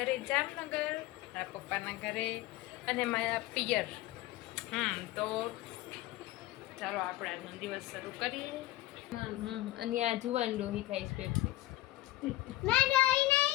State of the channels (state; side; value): quieter; right; 16.9 dB